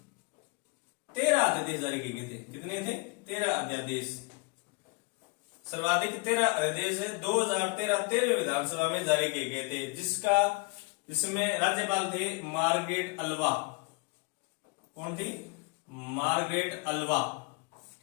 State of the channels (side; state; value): right; quieter; 30.2 dB